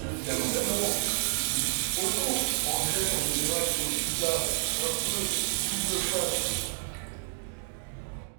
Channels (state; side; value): silent; left; 58 dB below the other